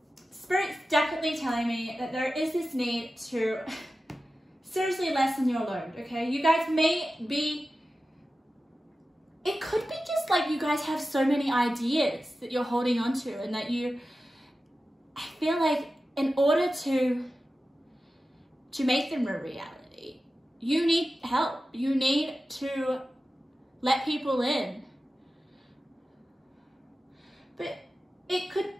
Spirit's definitely telling me that there is this need to seriously lessen your load, okay? You guys may be, it could be just like you guys have so many ideas that you're holding on to and that you, I feel like in order to make them a reality, you need help. You need to let people in. But it could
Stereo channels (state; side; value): normal; both; correlation 0.94